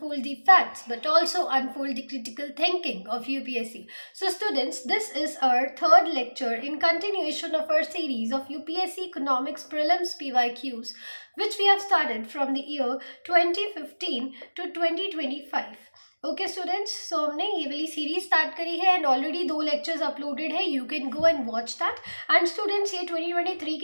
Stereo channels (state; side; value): inverted; both; correlation -1.00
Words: the facts but also unfold the critical thinking of UPSC. So, students, this is our third lecture in continuation of our series of UPSC Economics Prelims PYQs, which we have started from the year 2015 to 2025. Okay students, सो हमने ये वाली सीरीज स्टार्ट करी है एंड ऑलरेडी 2 लेक्चर्स अपलोडेड है. You can go and watch that. And students, ये 2023